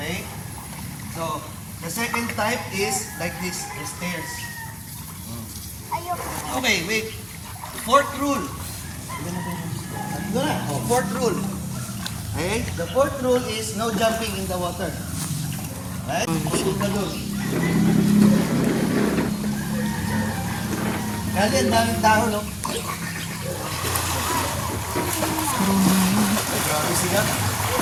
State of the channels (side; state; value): both; identical; correlation 1.00